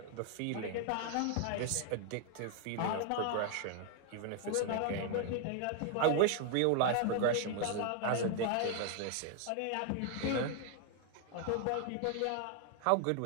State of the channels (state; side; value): different; both; correlation 0.00